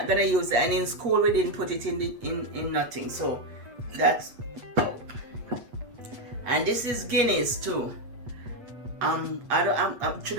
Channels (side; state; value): left; late; 8.3 ms